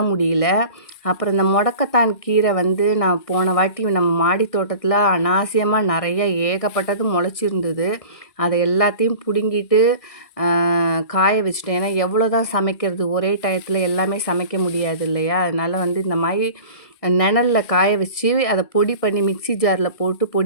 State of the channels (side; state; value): right; late; 1.6 ms